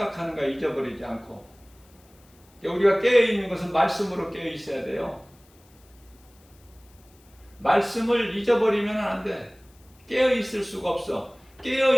거 잊어버리지 않고, 우리가 깨어있는 것은 말씀으로 깨어있어야 돼요. 말씀을 잊어버리면 안 돼. 깨어있을 수가 없어.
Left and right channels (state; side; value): noise; left; hiss, 30 dB below the sound